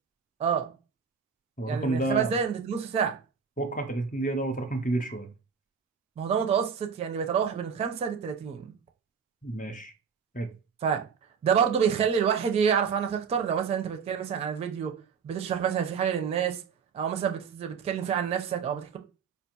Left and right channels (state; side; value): quieter; left; 6.3 dB